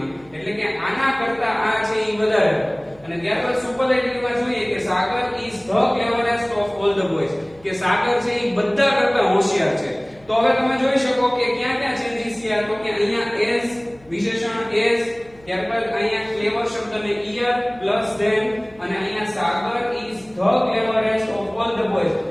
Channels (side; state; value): left; noise; hum, 27 dB below the sound